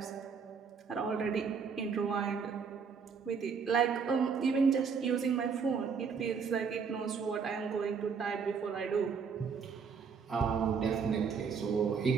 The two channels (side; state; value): left; quieter; 5.9 dB